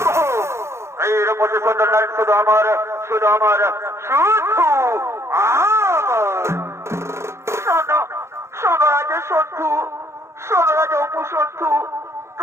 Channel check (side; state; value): left; late; 0.13 ms